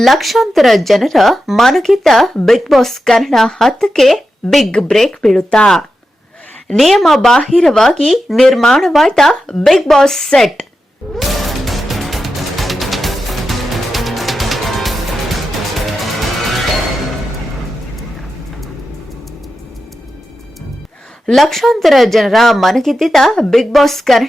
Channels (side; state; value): both; normal; correlation 0.90